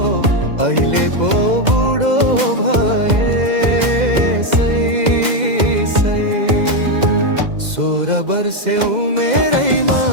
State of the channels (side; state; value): left; late; 2.0 ms